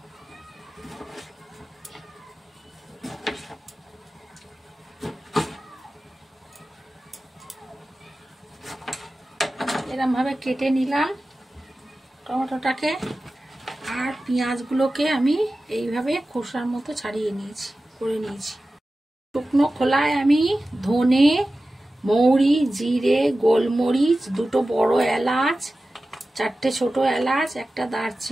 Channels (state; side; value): normal; both; correlation 0.95